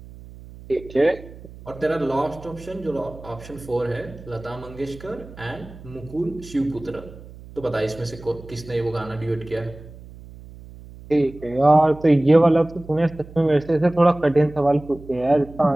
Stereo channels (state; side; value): noise; right; hum, 18 dB below the sound